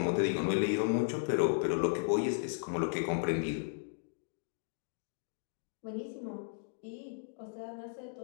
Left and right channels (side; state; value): right; silent; digital silence